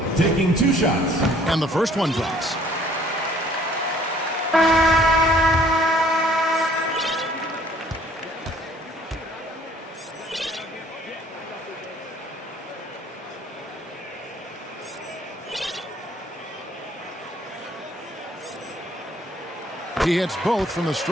Taking 2 shots. And the first one drops. He hits both from the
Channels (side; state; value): both; normal; correlation 0.58